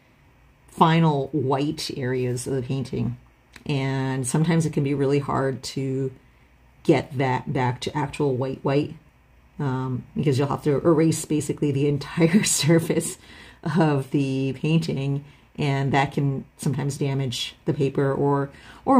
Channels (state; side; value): identical; both; correlation 1.00